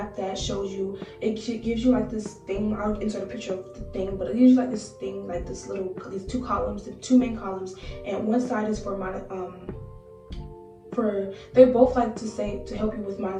that shows you, it gives you like this thing. I'll insert a picture of the thing, but it gives you like this thing, like these 2 columns, the 2 main columns, and one side is for they both like to help you with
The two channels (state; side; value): identical; both; correlation 1.00